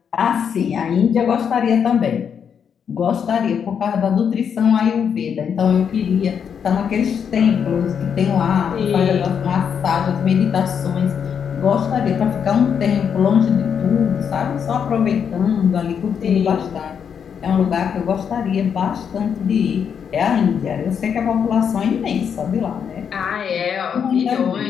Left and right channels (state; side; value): quieter; right; 7.4 dB